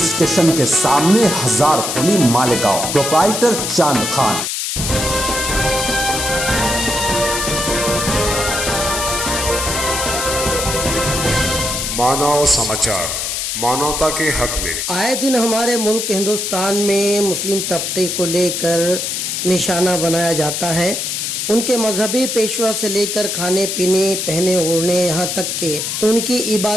स्टेशन के सामने, हजार खोली, मालेगांव। प्रोप्राइटर चांद खान। मानव समाचार, मानवता के हक में। आए दिन हमारे मुल्क हिंदुस्तान में मुस्लिम तबके को लेकर निशाना बनाया जाता है। उनके मजहबी पेशवा से लेकर खाने पीने, पहने ओढ़ने, यहाँ तक के उनकी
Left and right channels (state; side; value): noise; left; hiss, 2 dB below the sound